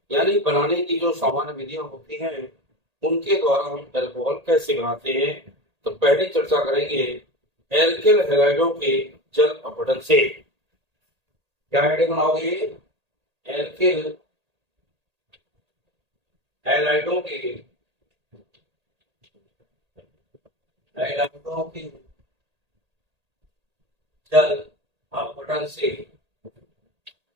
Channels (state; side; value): late; left; 1.8 ms